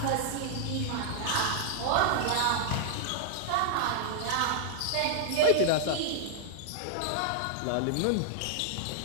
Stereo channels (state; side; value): different; both; correlation -0.01